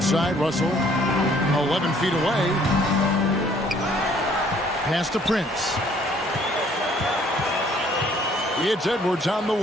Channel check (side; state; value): both; normal; correlation 0.60